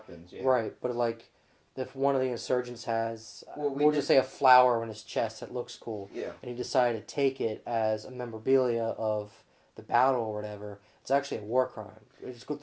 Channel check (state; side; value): identical; both; correlation 1.00